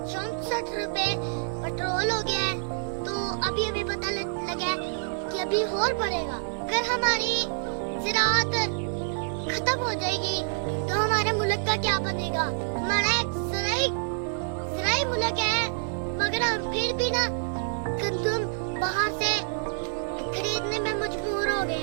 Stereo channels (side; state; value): left; silent; 56 dB below the other